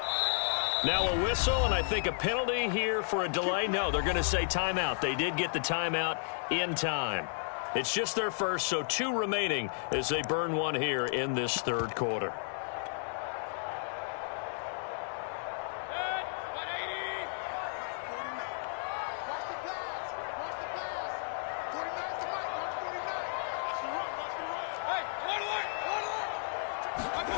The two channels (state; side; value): silent; right; digital silence